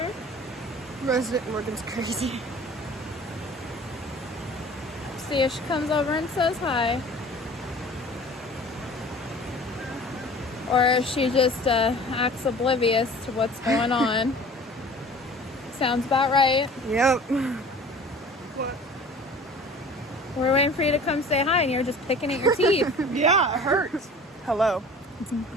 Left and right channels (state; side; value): normal; both; correlation 0.44